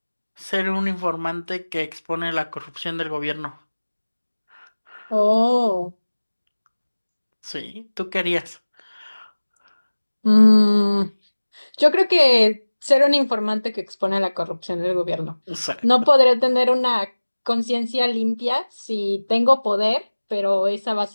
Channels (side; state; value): both; inverted; correlation -1.00